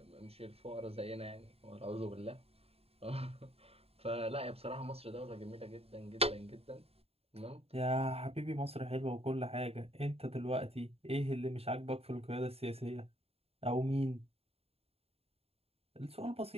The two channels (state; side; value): late; left; 0.29 ms